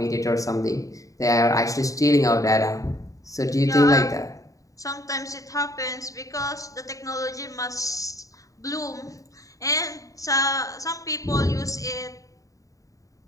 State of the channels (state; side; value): late; right; 0.16 ms